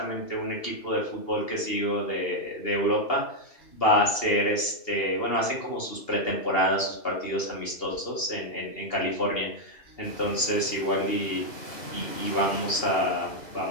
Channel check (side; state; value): right; late; 2.8 ms